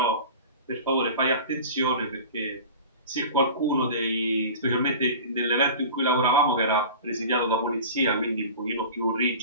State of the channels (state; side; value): inverted; both; correlation -0.37